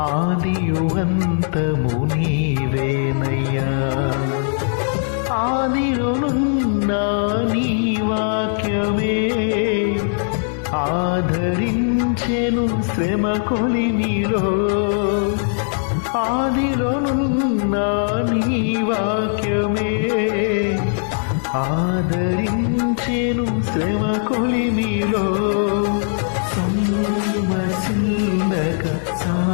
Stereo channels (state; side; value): silent; right; 65 dB below the other